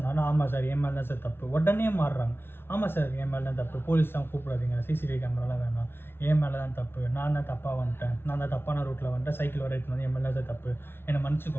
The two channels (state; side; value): late; right; 0.11 ms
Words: ஆமாம் சார் என் மேலே தான் சார் தப்பு. உடனே மாறுறாங்க, ஆமாம் சார் என் மேலே தான் தப்பு, போலீஸ்லாம் கூப்பிடாதீங்க, சிசிடிவி கேமராலாம் வேணாம், என் மேலே தான் தப்பு, நான் தான் தப்பாக வந்துட்டேன், நான் தான் தப்பான ரூட்டில் வந்துட்டேன், சைக்கிள் வர எடுத்து வந்து என் மேலே தான் சார் தப்பு, என்னை